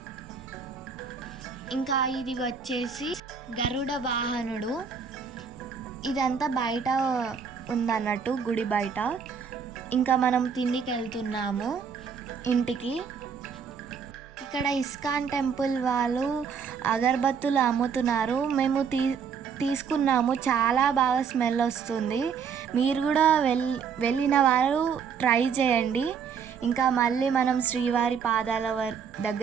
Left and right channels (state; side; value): quieter; left; 6.5 dB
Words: ఇంకా ఇది వచ్చేసి గరుడ వాహనుడు. ఇదంతా బయట ఉందన్నట్టు, గుడి బయట. ఇంకా మనం తిండికి వెళ్తున్నాము ఇంటికి. ఇక్కడ ఇస్కాన్ టెంపుల్ వాళ్ళు అగరబత్తులు అమ్ముతున్నారు. మేము తీసుకున్నాము. చాలా బాగా స్మెల్ వస్తుంది. మీరు కూడా వెళ్ళిన వారు ట్రై చేయండి. ఇంకా మళ్ళీ మనం శ్రీవారి పాదాల